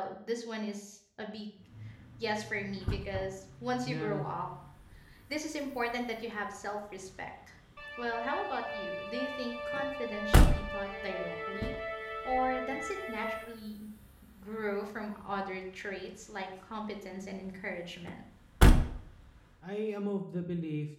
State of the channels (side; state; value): both; identical; correlation 1.00